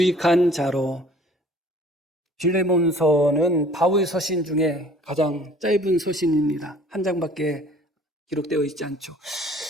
자로. 빌레몬서는 바울 서신 중에 가장 짧은 서신입니다. 한 장밖에 기록되어 있지 않죠.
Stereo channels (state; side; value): normal; both; correlation 0.52